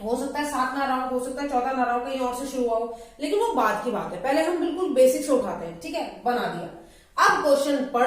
हो सकता है 7 ना रहा हो सकता है 14 ना रहा हो, कहीं और से शुरू हुआ हो, लेकिन वो बाद की बात है, पहले हम बिल्कुल बेसिक से उठाते हैं, ठीक है, बना दिया। अब क्वेश्चन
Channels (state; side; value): identical; both; correlation 1.00